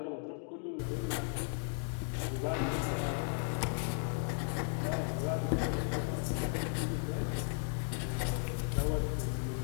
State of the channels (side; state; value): right; silent; 54 dB below the other